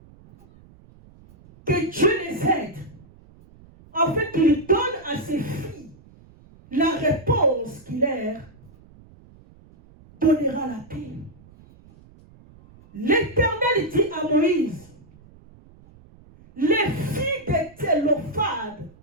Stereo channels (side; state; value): right; noise; rumble, 25 dB below the sound